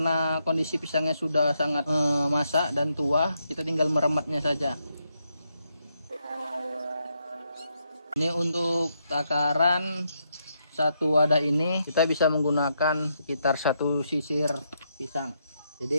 kondisi pisangnya sudah sangat masak dan tua, kita tinggal merematnya saja. Ini untuk takaran satu wadah ini kita bisa menggunakan sekitar 1 sisir pisang.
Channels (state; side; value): inverted; both; correlation -0.79